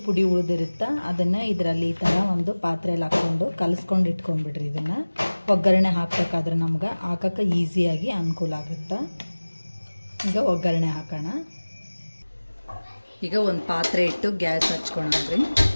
ಪುಡಿ ಉಳಿದಿರುತ್ತಾ ಅದನ್ನು ಇದರಲ್ಲಿ ಈ ಥರ ಒಂದು ಪಾತ್ರೆಯಲ್ಲಿ ಹಾಕ್ಕೊಂಡು ಕಲಿಸ್ಕೊಂಡು ಇಟ್ಕೊಂಡ್ಬಿಡ್ರಿ. ಇದನ್ನು ಒಗ್ಗರಣೆ ಹಾಕಬೇಕಾದ್ರೆ ನಮ್ಗೆ ಹಾಕೋಕ್ಕೆ ಈಸಿಯಾಗಿ ಅನುಕೂಲ ಆಗುತ್ತೆ. ಈಗ ಒಗ್ಗರಣೆ ಹಾಕೋಣ. ಈಗ ಒಂದು ಪಾತ್ರೆ ಇಟ್ಟು ಗ್ಯಾಸ್ ಹಚ್ಕೊಳಂದ್ರಿ.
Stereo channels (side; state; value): both; inverted; correlation -1.00